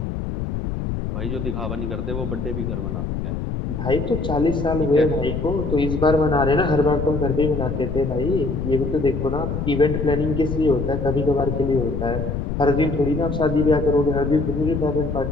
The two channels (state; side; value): noise; left; rumble, 3 dB below the sound